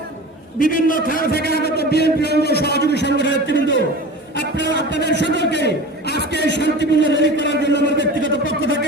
বিভিন্ন থানা থেকে আগত বিএনপি অঙ্গ সহযোগী সংগঠনের নেতৃবৃন্দ, আপনাদের সকলকে আজকে শান্তিপূর্ণ র্যালি করার জন্য আমার ব্যক্তিগত পক্ষ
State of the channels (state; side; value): normal; both; correlation 0.35